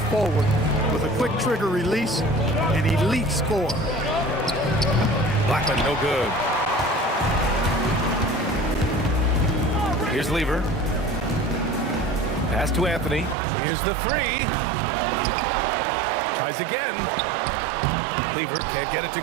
forward with a quick trigger release, an elite scorer. Blackman, no good. Here's Lever. Pass to Anthony. Here's the 3. Tries again. Lever can't get it to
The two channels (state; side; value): drops out; left; at 13.4 s